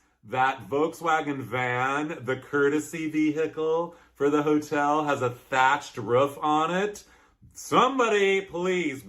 that Volkswagen van, the courtesy vehicle for the hotel, has a thatched roof on it. Somebody, please,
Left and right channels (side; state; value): both; identical; correlation 1.00